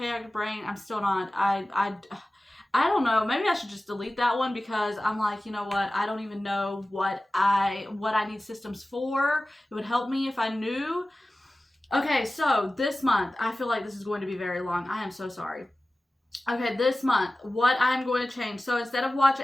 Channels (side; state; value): both; normal; correlation 0.96